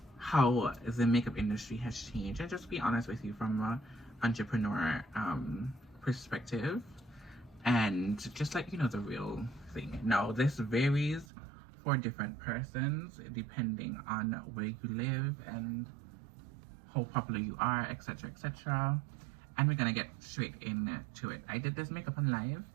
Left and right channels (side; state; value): left; drops out; at 11.2 s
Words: how the makeup industry has changed, and just be honest with you from an entrepreneur perspective, and just let you know the real thing. Now, this varies for different persons depending on where you live and how popular you are, etc, etc. And we're gonna get straight into it. I did this makeup on live.